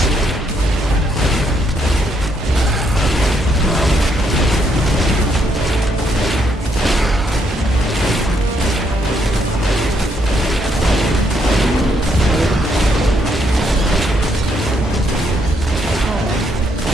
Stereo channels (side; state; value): both; normal; correlation 0.74